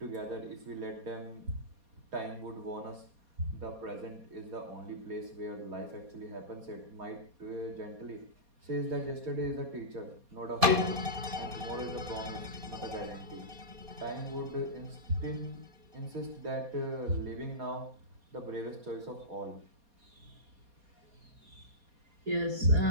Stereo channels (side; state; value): left; late; 4.2 ms